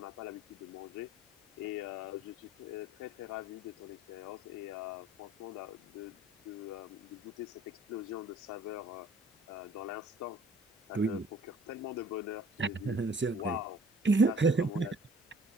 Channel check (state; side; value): normal; both; correlation 0.54